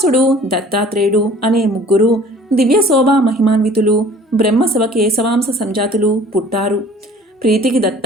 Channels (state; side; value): normal; both; correlation 0.50